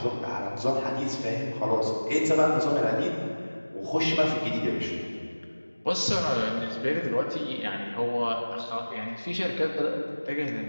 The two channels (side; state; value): both; inverted; correlation -1.00